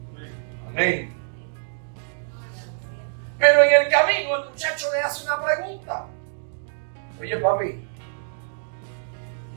Amén. Pero en el camino el muchacho le hace una pregunta. Oye, papi,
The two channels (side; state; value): left; silent; digital silence